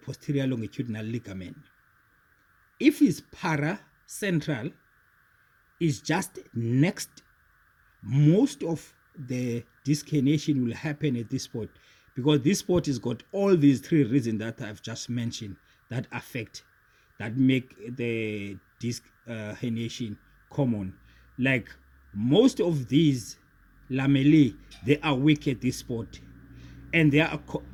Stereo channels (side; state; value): both; identical; correlation 1.00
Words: longitudinal ligament. If it's paracentral, it's just next. Most of the disc herniation will happen at this spot because this spot has got all these 3 reasons that I've just mentioned that affect, that make the disc herniation common. Like most of these lamellae, they are weak at this spot. and they are